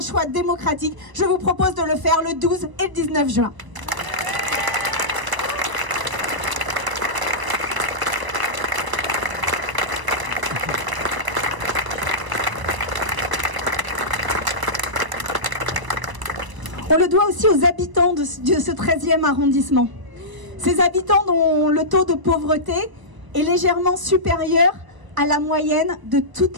choix démocratique. Je vous propose de le faire le 12 et le 19 juin. On le doit aussi aux habitants de ce 13e arrondissement. Ces habitants dont le taux de pauvreté est légèrement supérieur à la moyenne de toute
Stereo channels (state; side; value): late; left; 1.0 ms